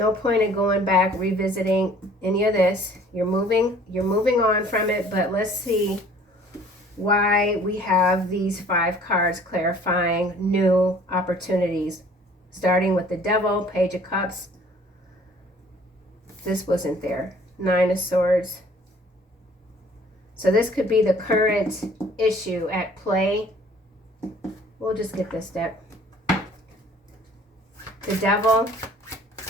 point in going back, revisiting any of this. You're moving on from it, but let's see why we have these 5 cards clarifying new opportunities. Starting with the Devil, Page of Cups. This wasn't there. 9 of Swords. So this could be the current issue at play. We'll just get this deck. the devil.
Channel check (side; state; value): both; normal; correlation 0.53